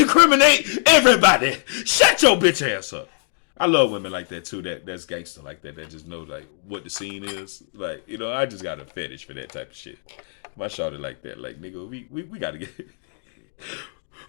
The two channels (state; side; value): silent; right; digital silence